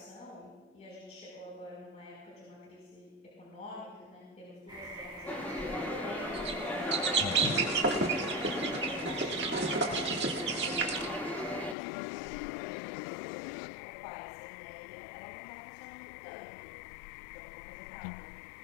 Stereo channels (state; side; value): drops out; right; at 11.8 s